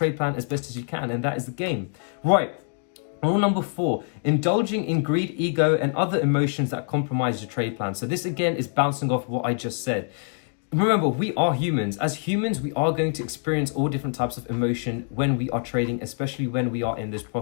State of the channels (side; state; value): right; silent; 56 dB below the other